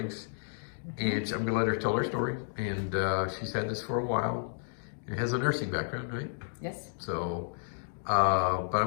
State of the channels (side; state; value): right; silent; digital silence